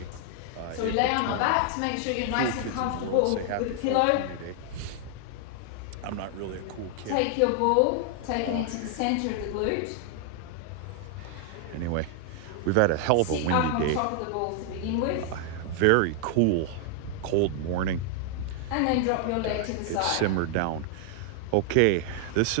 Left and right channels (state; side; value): different; both; correlation 0.00